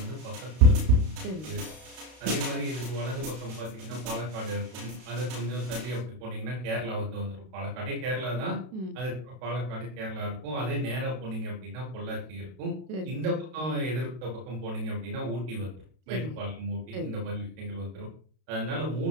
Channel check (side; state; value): left; late; 32 ms